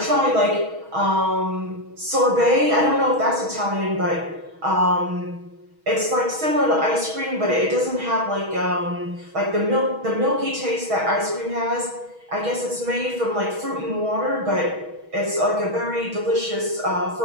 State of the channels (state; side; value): late; left; 6.3 ms